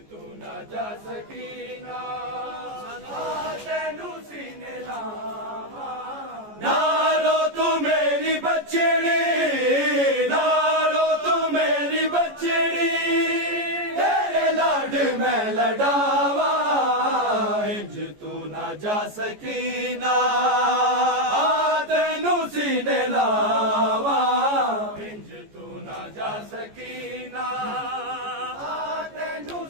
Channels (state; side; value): late; left; 14 ms